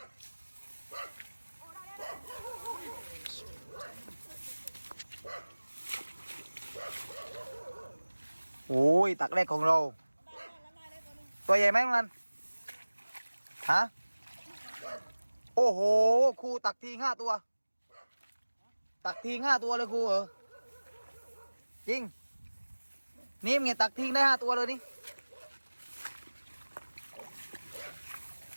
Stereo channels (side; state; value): both; inverted; correlation -1.00